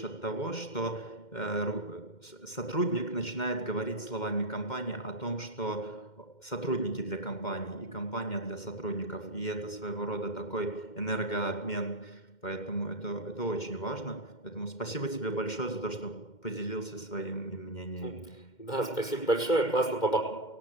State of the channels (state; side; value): late; right; 2.1 ms